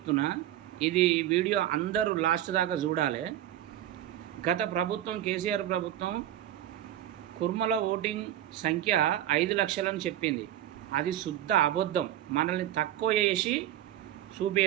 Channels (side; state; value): left; quieter; 12.4 dB